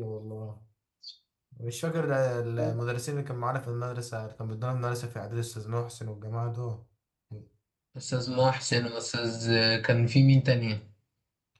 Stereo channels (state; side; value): identical; both; correlation 1.00